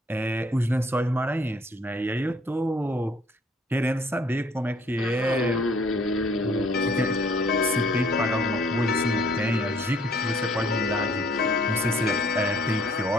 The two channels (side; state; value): both; normal; correlation 0.60